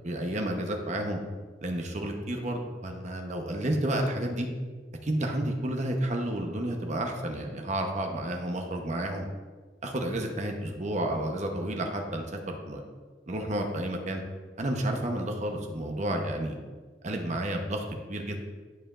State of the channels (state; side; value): normal; both; correlation 0.61